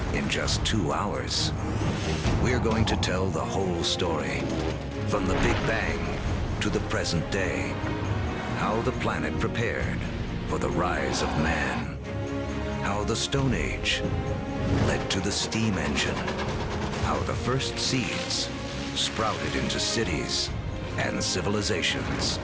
in just 2 hours? We're going to tell the whole story, from the Big Bang to the present day. How the planet prepared for the rise of man. How the Stone Age led to the steam engine. How the first seeds sprouted into cities and civilizations.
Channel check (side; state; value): both; identical; correlation 1.00